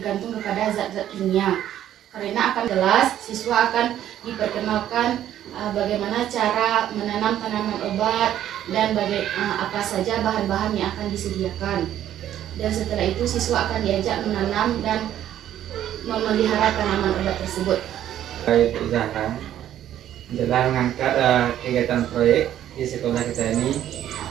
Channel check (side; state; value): left; quieter; 11.5 dB